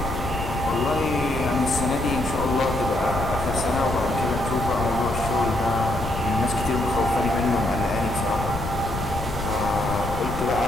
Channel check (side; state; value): left; noise; rumble, 7 dB below the sound